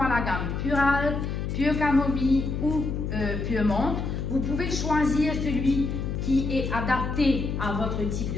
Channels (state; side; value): noise; left; hum, 3 dB below the sound